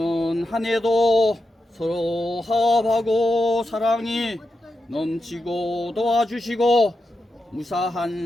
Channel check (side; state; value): both; normal; correlation 0.87